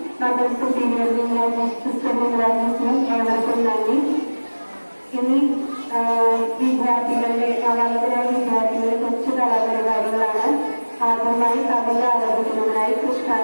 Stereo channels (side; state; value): both; inverted; correlation -1.00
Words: മദർ സുപ്പീരിയർ സിസ്റ്റർ വിംഗ്ലാജിനും ഏവർക്കും നന്ദി. ഇനി വിദ്യാർത്ഥികളുടെ നവാഗതരായ വിദ്യാർത്ഥികളുടെ കൊച്ചു കലാപരിപാടികളാണ്. ആദ്യമായി കവിത ആരംഭിക്കുന്നതിനായി